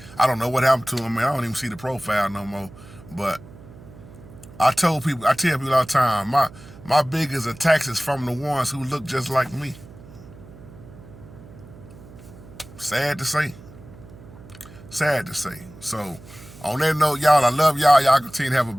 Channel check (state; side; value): noise; right; hum, 19 dB below the sound